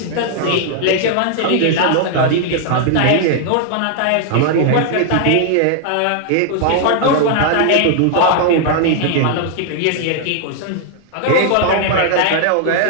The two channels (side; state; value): both; different; correlation 0.00